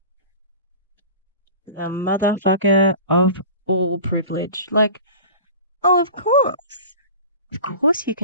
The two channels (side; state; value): both; inverted; correlation -0.38